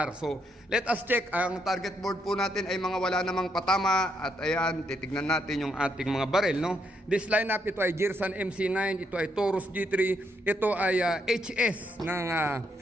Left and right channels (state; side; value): normal; both; correlation 0.76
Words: So let us check, ang target board po natin ay mga wala namang patama. At ayan, titignan natin yung ating mga baril. No? This line up, ito ay Girsan MC9, ito ay Taurus G3, ito ay HS ng